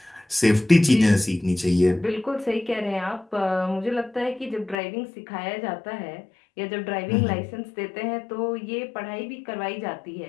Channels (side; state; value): right; drops out; at 4.8 s